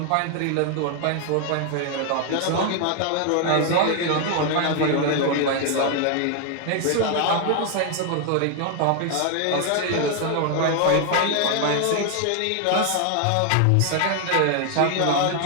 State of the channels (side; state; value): both; different; correlation 0.01